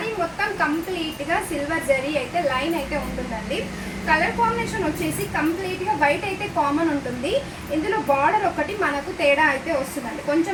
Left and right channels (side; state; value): both; identical; correlation 1.00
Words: మొత్తం కంప్లీట్గా సిల్వర్ జరీ అయితే లైన్ అయితే ఉంటుందండి. కలర్ కాంబినేషన్ వచ్చేసి కంప్లీట్గా వైట్ అయితే కామన్ ఉంటుంది. ఇందులో బార్డర్ ఒకటి మనకు తేడా అయితే వస్తుందండి,